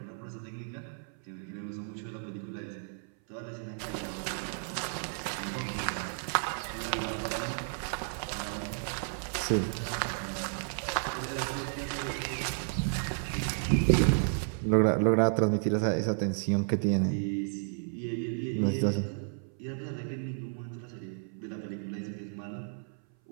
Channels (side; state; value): left; silent; 56 dB below the other